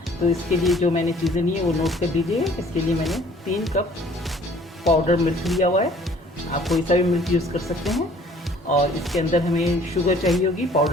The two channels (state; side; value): normal; both; correlation 0.55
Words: तो इसके लिए जो मैंने चीज़ें ली हैं वो नोट कर लीजिए। इसके लिए मैंने 3 कप पाउडर मिल्क लिया हुआ है। आप कोई सा भी मिल्क यूज़ कर सकते हैं। और इसके अंदर हमें शुगर चाहिए होगी,